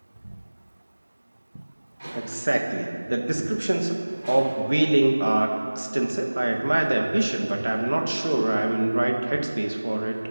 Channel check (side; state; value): both; inverted; correlation -1.00